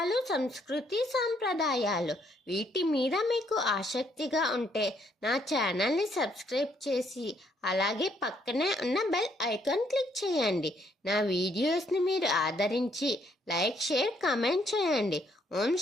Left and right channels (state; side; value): normal; both; correlation 0.70